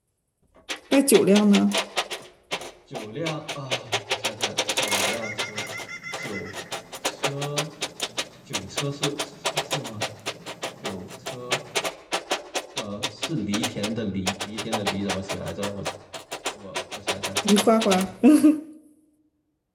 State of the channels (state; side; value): identical; both; correlation 1.00